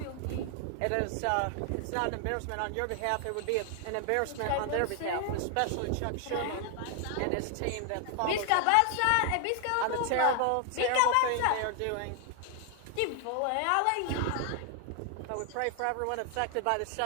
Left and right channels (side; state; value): both; different; correlation 0.00